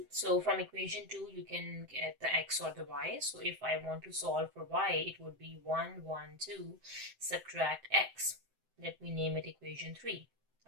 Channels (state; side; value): late; left; 7.8 ms